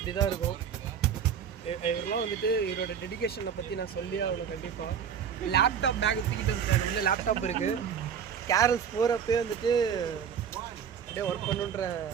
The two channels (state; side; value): quieter; left; 7.7 dB